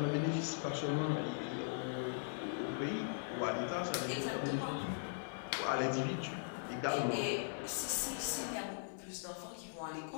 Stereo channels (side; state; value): right; silent; 51 dB below the other